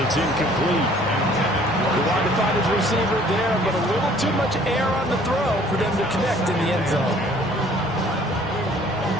it's incomplete. He wanted to find his receiver there, but a little too much air on the throw for them to connect in the end zone.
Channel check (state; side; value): normal; both; correlation 0.56